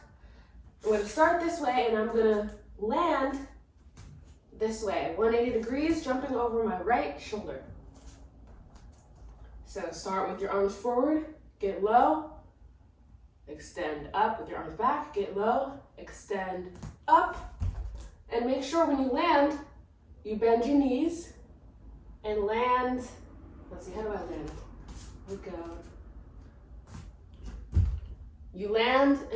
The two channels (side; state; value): both; identical; correlation 1.00